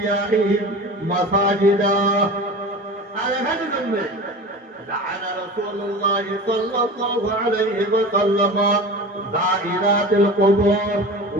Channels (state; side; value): normal; both; correlation 0.33